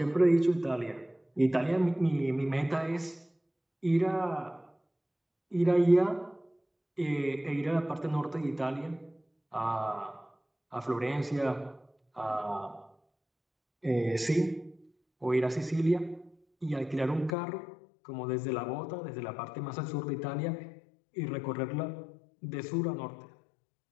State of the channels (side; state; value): right; drops out; at 17.4 s